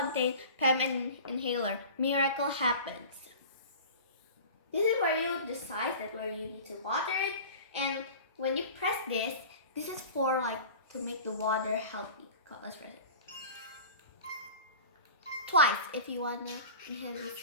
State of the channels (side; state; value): both; inverted; correlation -0.38